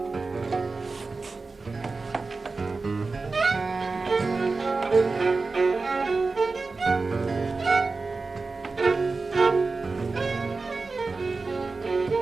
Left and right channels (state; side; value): quieter; left; 3.9 dB